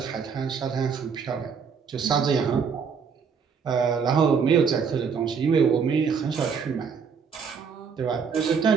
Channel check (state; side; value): quieter; left; 6.2 dB